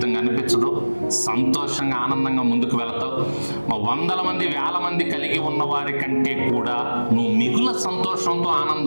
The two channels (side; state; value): both; inverted; correlation -1.00